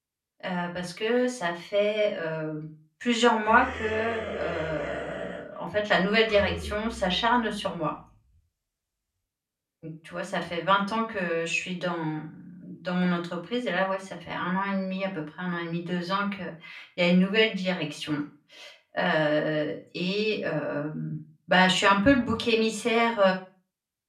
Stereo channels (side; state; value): both; identical; correlation 1.00